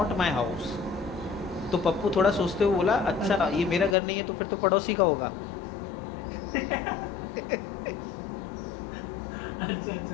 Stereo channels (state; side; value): drops out; right; at 4.0 s